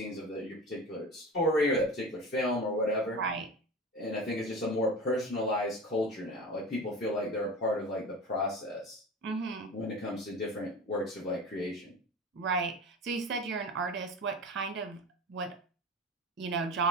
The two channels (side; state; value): both; normal; correlation 0.31